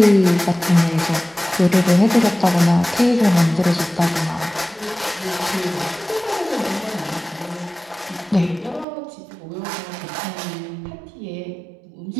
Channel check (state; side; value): drops out; left; at 8.8 s